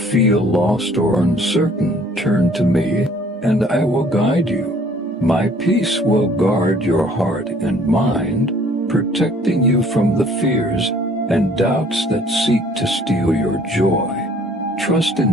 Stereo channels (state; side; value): normal; both; correlation 0.57